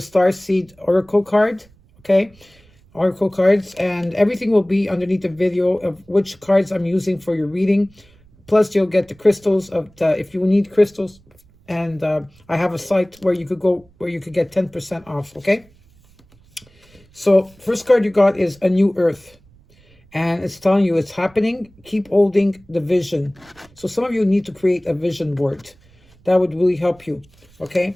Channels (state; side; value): noise; right; rumble, 30 dB below the sound